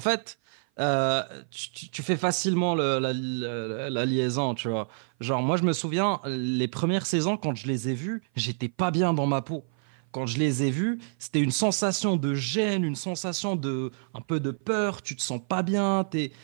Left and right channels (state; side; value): silent; left; 56 dB below the other